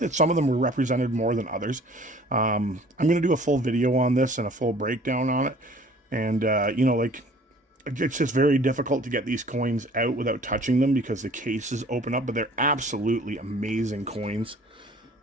some of them were represented more than others. I'm going to do a full video on this and a full breakdown on it. And, you know, like, it's just very difficult to get these coins out without touching them because the cases open up, but they're absolutely amazing coins.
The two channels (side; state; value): both; normal; correlation 0.52